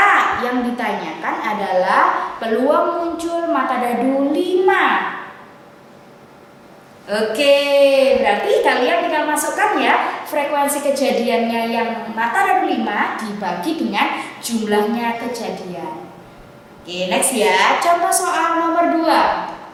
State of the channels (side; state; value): both; identical; correlation 1.00